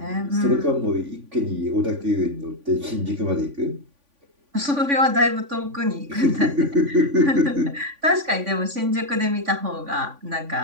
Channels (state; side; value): late; left; 3.5 ms